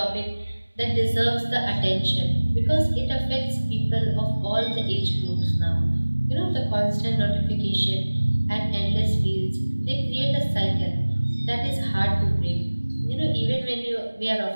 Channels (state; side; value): inverted; both; correlation -1.00